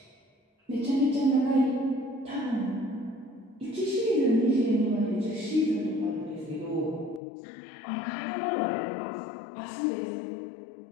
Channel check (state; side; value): drops out; right; at 7.2 s